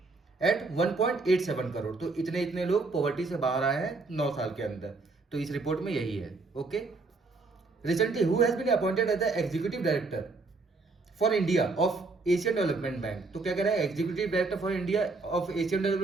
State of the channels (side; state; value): left; quieter; 3.7 dB